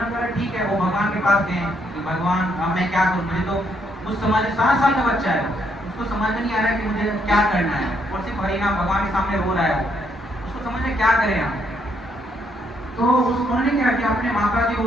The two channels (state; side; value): normal; both; correlation 0.73